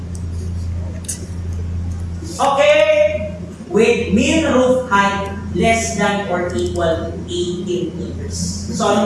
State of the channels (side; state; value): both; identical; correlation 1.00